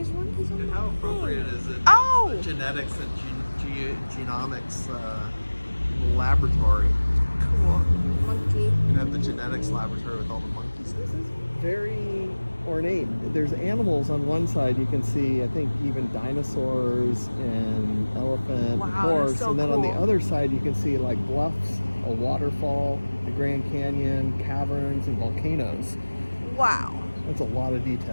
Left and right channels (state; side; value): inverted; both; correlation -1.00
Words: monkeys on And the how appropriate is it? Oh! The genetics and genomics laboratory. Cool. monkey. You have the genetics laboratory with all the monkeys. This is very ornate. There's animals on one side. You can see, I think, even dinosaurs and elephant, Wow, horse. that's so and then on the cool. other side, you can see like bluffs, a waterfall, the Grand Canyon, caverns, and volcanoes. Wow. That's a lot of